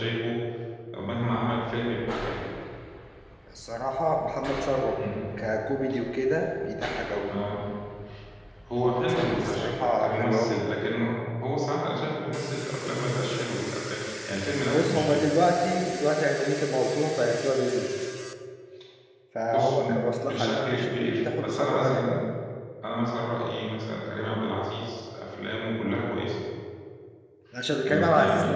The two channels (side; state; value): both; identical; correlation 1.00